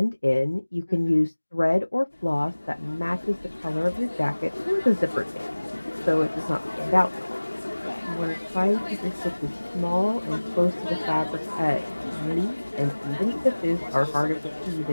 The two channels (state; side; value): inverted; both; correlation -1.00